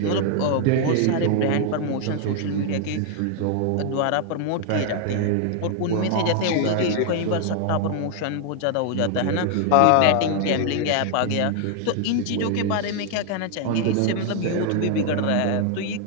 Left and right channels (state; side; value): different; both; correlation 0.00